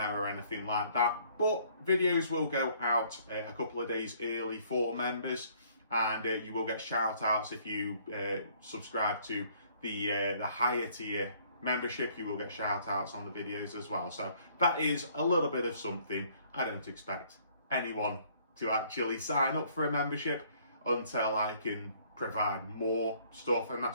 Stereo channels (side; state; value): both; inverted; correlation -0.61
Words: or anything like that. But videos will go out a couple of days early for members, and you will get shout outs if you subscribe to the higher tier membership. You will get shout outs on the videos as well. So that is a little bit of something. I don't expect anyone to actually sign up for a membership until I can provide more stuff, and